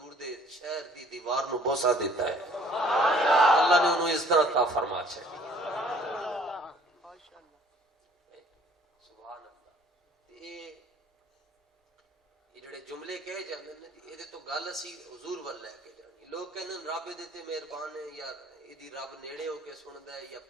دے شہر دی دیوار نو بوسا دیتا ہے، اللہ نے انہوں اس طرح عطا فرما چھڈی۔ سبحان اللہ۔ یہ جڑے جملے کہے جاندے نے یہ تو گل اسی حضور ول لے کے جانی۔ لوگ کہندے رب دے تے مہربان ہے، یا ایدی رب نیڑے ہو کے سندا ہے، یا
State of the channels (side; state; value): both; normal; correlation 0.56